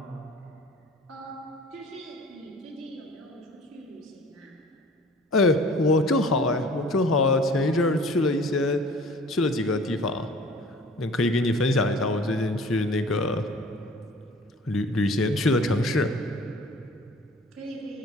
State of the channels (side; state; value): both; normal; correlation 0.47